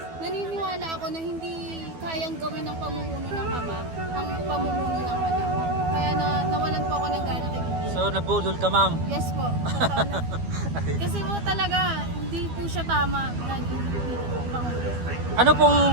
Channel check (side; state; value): left; late; 12 ms